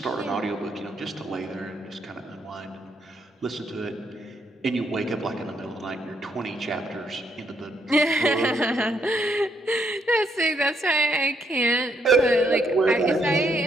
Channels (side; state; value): both; normal; correlation 0.74